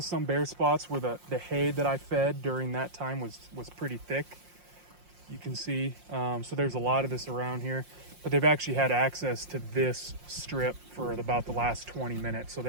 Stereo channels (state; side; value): late; left; 5.6 ms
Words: spots where the hay that I fed during that time was pretty thick. You can see, so there's a lot of this around here, but they've actually had access to this strip for about the last 20 minutes. So